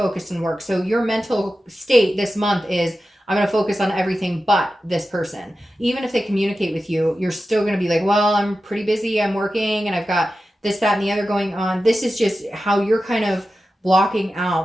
on work. So your mental state this month is, I'm going to focus on everything but this person. Even if they communicate with you, you're still going to be like, well, I'm pretty busy. I'm working and I've got this, that, and the other going on. This is just how you're kind of blocking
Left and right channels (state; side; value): normal; both; correlation 0.93